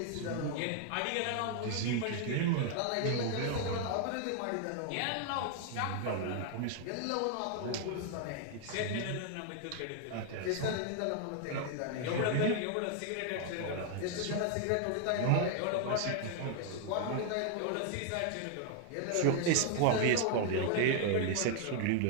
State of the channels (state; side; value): different; both; correlation 0.00